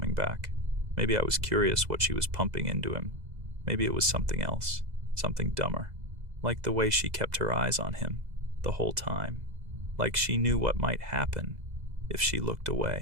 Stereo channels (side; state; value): left; late; 2.0 ms